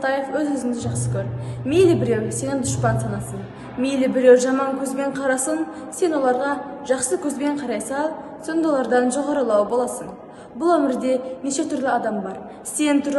өз-өзіңді жақсы көр. Мейлі біреу сенің дұшпан санасын, мейлі біреу жаман көзбен қарасын, сен оларға жақсы көзбен қарай сал, сонда олардан жоғарылау боласың. Бұл өмірде неше түрлі адам бар. Сен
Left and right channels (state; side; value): identical; both; correlation 1.00